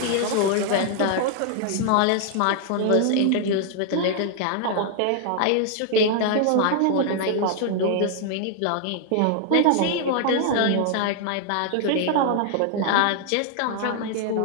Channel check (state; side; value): different; both; correlation 0.00